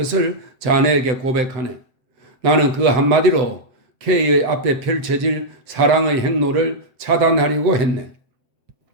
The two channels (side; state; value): left; late; 7.7 ms